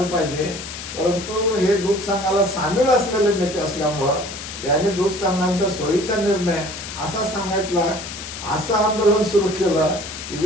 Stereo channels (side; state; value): left; noise; hiss, 10 dB below the sound